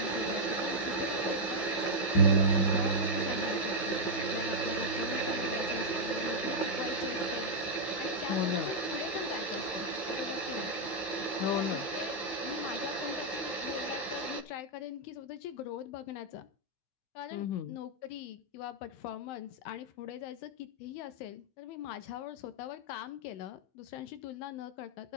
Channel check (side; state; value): right; late; 15 ms